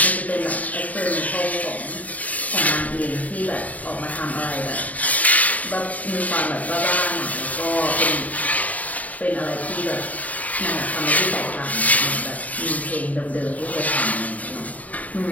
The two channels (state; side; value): late; right; 0.072 ms